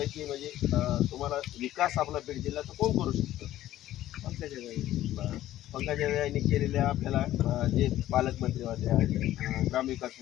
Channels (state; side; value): quieter; right; 13.8 dB